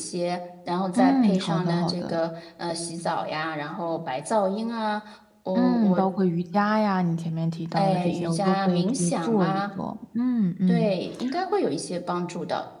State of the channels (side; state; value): both; identical; correlation 1.00